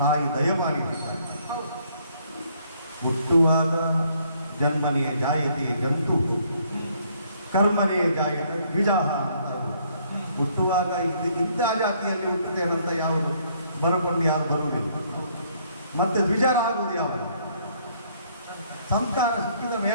ದಯಪಾಲಿಸುತ್ತಾರೆ. ಹುಟ್ಟುವಾಗ ಜನ್ಮನೆಯ ಜಾಯತೆ ಜಂತು, ಕರ್ಮನೆಯ ಜಾಯತ ದ್ವಿಜಾಹ ಅಂತ. ಹುಟ್ಟುವಾಗ ಇಂಥ ಜಾತಿಯಲ್ಲಿ ಹುಟ್ಟುತ್ತೇನಂತ ಯಾವುದು ಬರಕೊಂಡು ಯಾರು ಬರುವುದಿಲ್ಲ. ಮತ್ತೆ ದ್ವಿಜರಾಗುವುದು ಯಾವುದು? ಸಂಸ್ಕಾರ ಸಿಕ್ಕಿದ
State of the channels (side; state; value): both; inverted; correlation -0.66